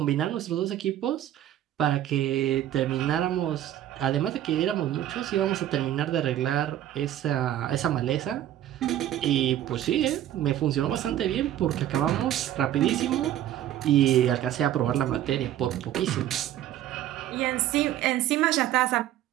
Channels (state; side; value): quieter; left; 12.2 dB